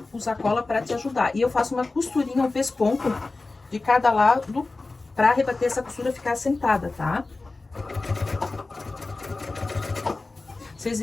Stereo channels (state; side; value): quieter; right; 3.5 dB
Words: usar cola para te ajudar. E eu faço uma costurinha, um pesponto de cada lado, para rebater essa costura ficar assentada, tá? Vocês